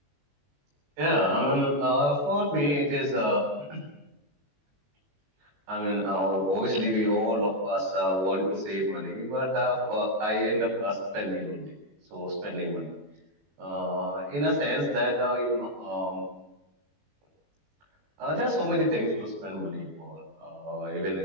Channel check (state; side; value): late; left; 21 ms